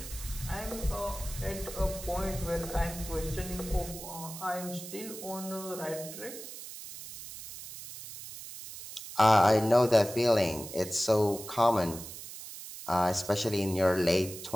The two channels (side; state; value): right; noise; hiss, 12 dB below the sound